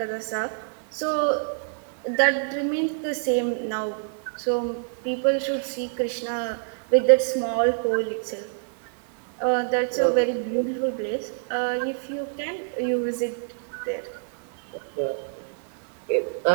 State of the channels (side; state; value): left; silent; 61 dB below the other